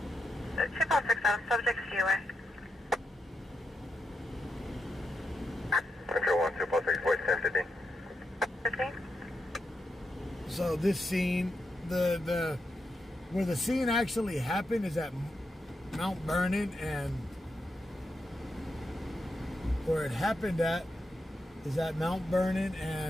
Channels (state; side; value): normal; both; correlation 0.84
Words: Chip out 6 out, subject COA. Control 1, 246, voice 1050. 15? So this scene, where the scene actually happened is at Mount Vernon, and where it happened at is at Mount Vernon